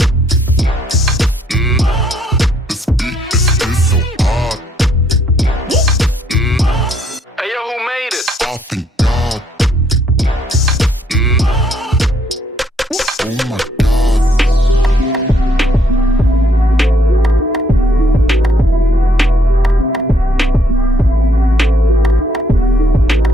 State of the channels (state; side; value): normal; both; correlation 0.69